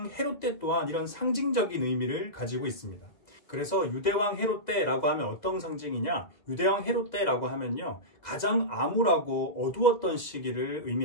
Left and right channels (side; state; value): right; late; 2.0 ms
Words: 헤롯 때 또한 이런 상징적인 의미를 가지고 있습니다. 그래서 유대왕 헤롯 때라고 하면 어떤 상징이냐? 유대왕 헤롯 때라고 하면요, 가장 암울하고 어두웠던 시기를